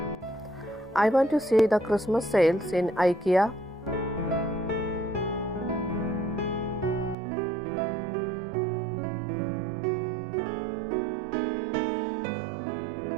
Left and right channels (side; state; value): left; drops out; at 7.2 s